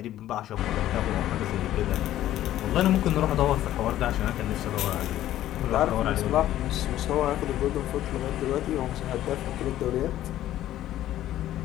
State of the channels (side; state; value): right; quieter; 13.2 dB